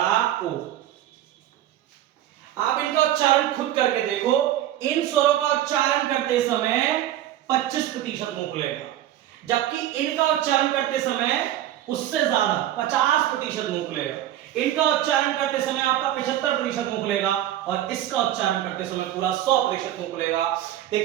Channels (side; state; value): left; quieter; 12.6 dB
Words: ओ। आप इनका उच्चारण खुद करके देखो। इन स्वरों का उच्चारण करते समय 25% मुंह खुलेगा, जबकि इनका उच्चारण करते समय उससे ज्यादा 50% मुंह खुलेगा। इनका उच्चारण करते समय आपका 75% मुंह खुलेगा, और इसका उच्चारण करते समय पूरा 100% मुंह खुलेगा।